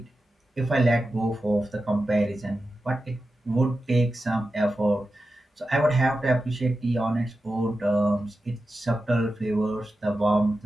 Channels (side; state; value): both; normal; correlation 0.92